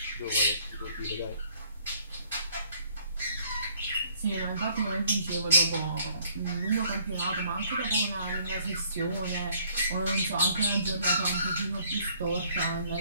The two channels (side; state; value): both; inverted; correlation -0.62